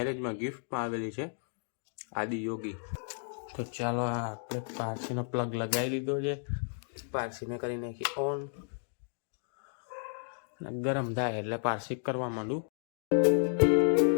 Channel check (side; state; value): right; silent; digital silence